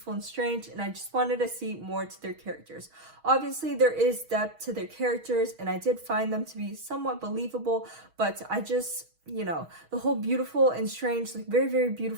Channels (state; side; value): late; left; 6.3 ms